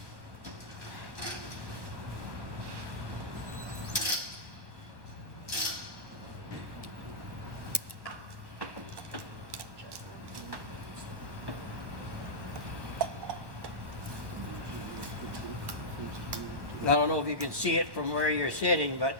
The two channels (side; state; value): left; late; 1.1 ms